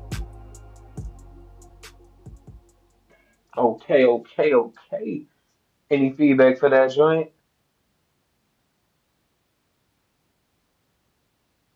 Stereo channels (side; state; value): both; identical; correlation 1.00